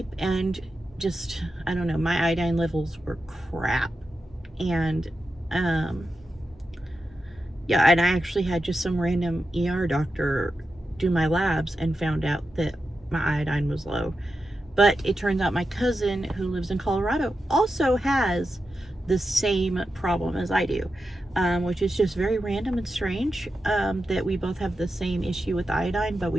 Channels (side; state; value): both; normal; correlation 0.90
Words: and just, I don't know, my iodine levels were crap. And yeah, and I actually had just some random ER doctor do my labs and found out that my iodine was low. But it turns out my cousin who lives in Colorado also has the same problem as I do, which is just very random and strange, that we both have the same issue with iodine, but